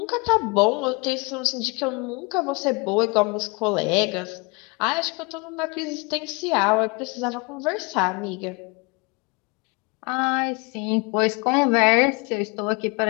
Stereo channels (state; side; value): quieter; right; 29.2 dB